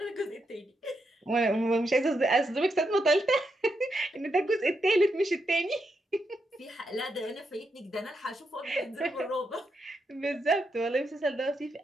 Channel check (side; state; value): both; normal; correlation 0.83